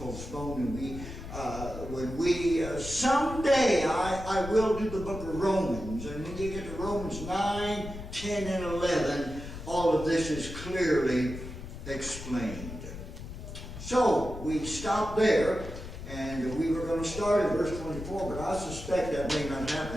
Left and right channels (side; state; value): left; noise; rumble, 10 dB below the sound